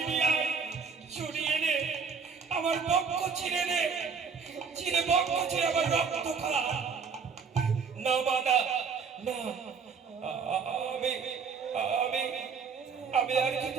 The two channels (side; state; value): left; quieter; 5.7 dB